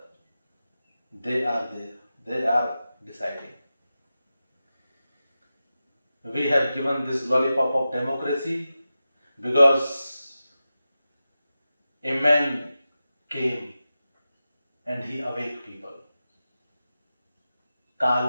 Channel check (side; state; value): both; inverted; correlation -0.93